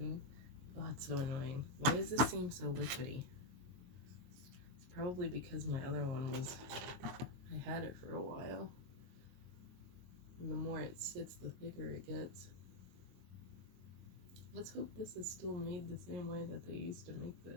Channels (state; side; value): late; left; 22 ms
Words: oh, it's so annoying. Why does this seem so liquidy? It's probably because my other one was, I had it for a while. And the more it sits, the thicker it gets. Let's hope this is still made the same way that they used to make